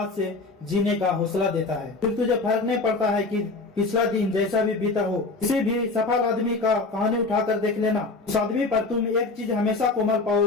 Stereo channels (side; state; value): right; quieter; 3.5 dB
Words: से जीने का हौसला देता है। फिर तुझे फर्क नहीं पड़ता है कि पिछला दिन जैसा भी बीता हो। किसी भी सफल आदमी का कहानी उठाकर देख लेना, उस आदमी पर तुम एक चीज हमेशा कोमल